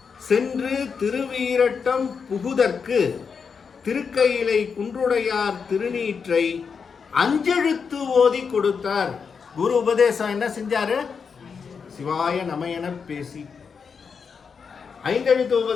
சென்று திருவீரட்டம் புகுதற்கு திருக்கையிலை குன்றுடையார் திருநீற்றை 5 எழுத்து ஓதி கொடுத்தார். குரு உபதேசம் என்ன செஞ்சாரு? சிவாய நமயன பேசி 5 எழுத்து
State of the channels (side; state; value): right; quieter; 5.9 dB